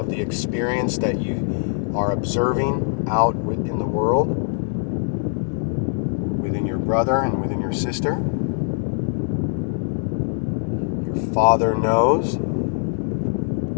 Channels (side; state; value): right; silent; 63 dB below the other